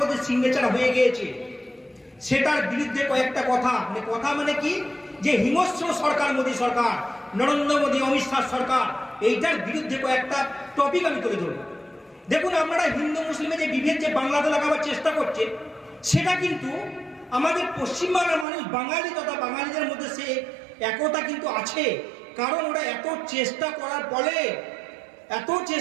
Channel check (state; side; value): drops out; left; at 18.4 s